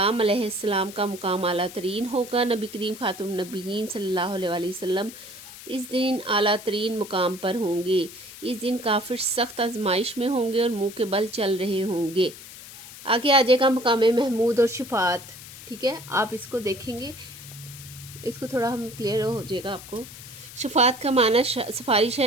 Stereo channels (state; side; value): noise; left; hiss, 15 dB below the sound